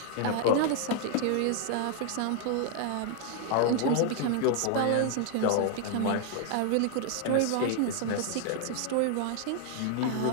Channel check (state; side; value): different; both; correlation 0.00